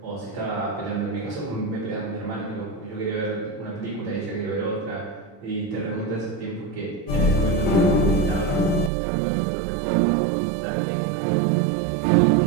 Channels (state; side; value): drops out; left; at 8.9 s